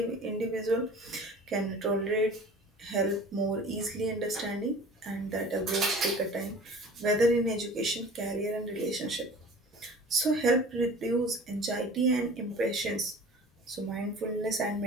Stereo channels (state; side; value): normal; both; correlation 0.43